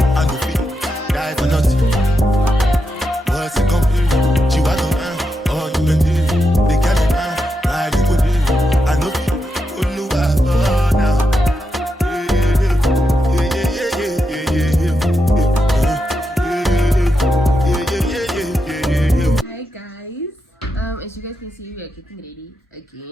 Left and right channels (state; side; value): normal; both; correlation 0.85